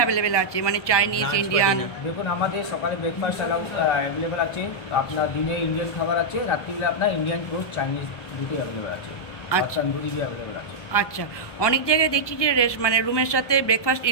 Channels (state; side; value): late; right; 1.2 ms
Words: আছে, মানে চাইনিজ, ইন্ডিয়ান? দেখুন আমাদের সকালে ব্রেকফাস্ট অ্যাভেলেবেল আছে, আপনার দিনে ইন্ডিয়ান খাবার আছে, রাত্রিবেলা আপনার ইন্ডিয়ান পোস্ট চাইনিজ দুটোই অ্যাভেলেবেল আছে। আচ্ছা, তন্দুরি অ্যাভেলেবেল আছে। আচ্ছা। অনেক জায়গায় দেখছি যে মানে রুমের সাথে ব্রেকফাস্ট